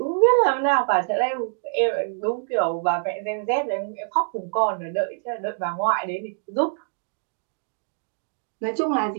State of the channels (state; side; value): silent; left; digital silence